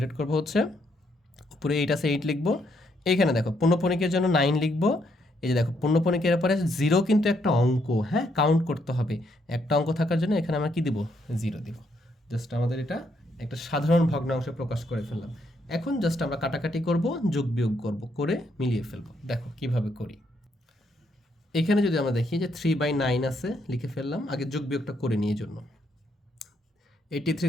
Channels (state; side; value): normal; both; correlation 0.74